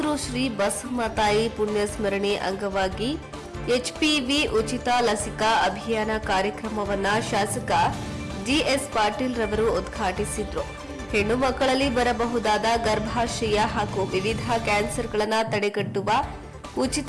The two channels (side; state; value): both; identical; correlation 1.00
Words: ಬಸಮ್ಮ ತಾಯಿ ಪುಣ್ಯಸ್ಮರಣೆ ಅಂಗವಾಗಿ ಎಚ್ಪಿವಿ ಉಚಿತ ಲಸಿಕಾ ಅಭಿಯಾನ ಕಾರ್ಯಕ್ರಮವನ್ನು ಶಾಸಕ ಜಿಎಸ್ ಪಾಟೀಲ್ ರವರು ಉದ್ಘಾಟಿಸಿದರು. ಹೆಣ್ಣು ಮಕ್ಕಳಲ್ಲಿ ಬರಬಹುದಾದ ಗರ್ಭಾಶಯ ಹಾಗೂ ವಿವಿಧ ಕ್ಯಾನ್ಸರ್ಗಳನ್ನು ತಡೆಗಟ್ಟುವ